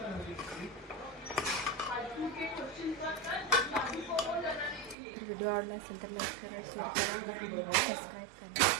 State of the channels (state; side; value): drops out; left; at 5.0 s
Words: व्हिडिओ आवडला असेल तर लाईक करा, शेअर करा, सबस्क्राईब करा